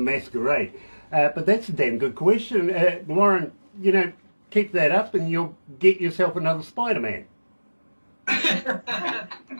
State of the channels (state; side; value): inverted; both; correlation -1.00